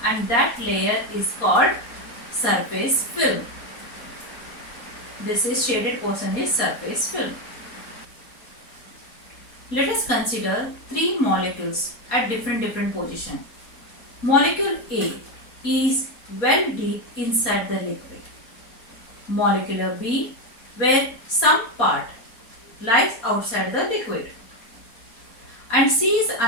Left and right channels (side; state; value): right; late; 4.3 ms